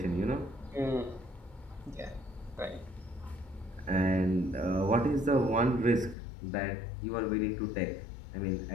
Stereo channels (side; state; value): right; drops out; at 6.2 s